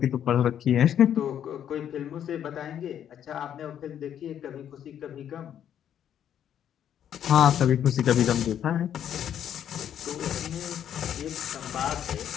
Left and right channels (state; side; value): quieter; right; 9.7 dB